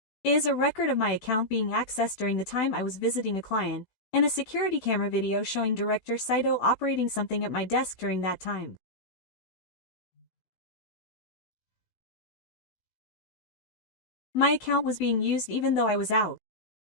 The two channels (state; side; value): late; right; 16 ms